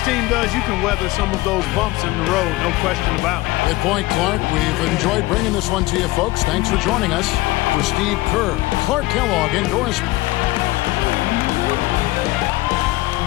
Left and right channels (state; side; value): quieter; right; 20.2 dB